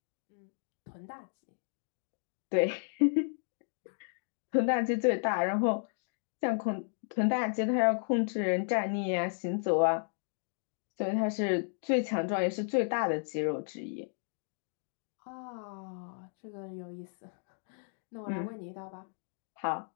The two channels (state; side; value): silent; right; digital silence